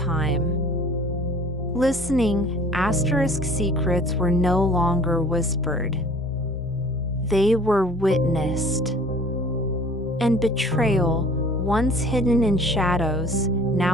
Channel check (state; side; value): normal; both; correlation 0.49